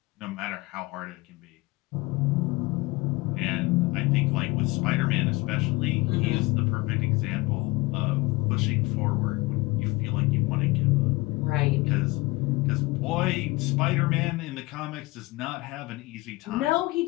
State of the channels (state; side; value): quieter; right; 22.4 dB